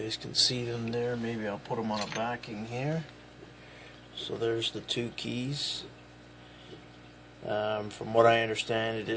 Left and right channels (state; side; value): identical; both; correlation 1.00